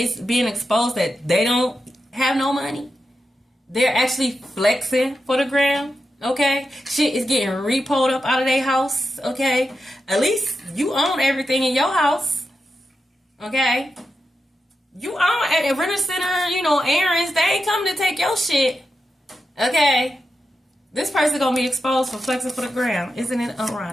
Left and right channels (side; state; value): both; normal; correlation 0.89